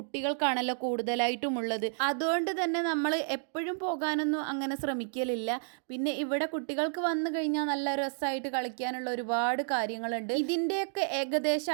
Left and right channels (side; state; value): left; silent; digital silence